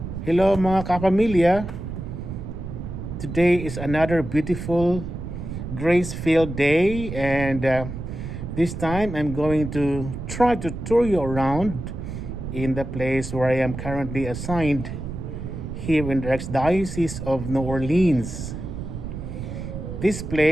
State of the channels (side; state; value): right; noise; rumble, 7 dB below the sound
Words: Hello mga kapamilya. Today is another beautiful grace-filled day and this time I'm going to try to tour you around in the place where I am currently assigned here in the Archdiocese of New Orleans. This